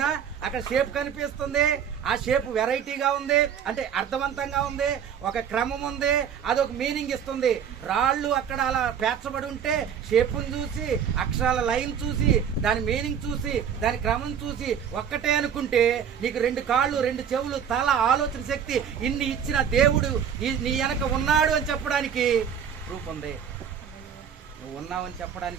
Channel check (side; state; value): left; quieter; 8.1 dB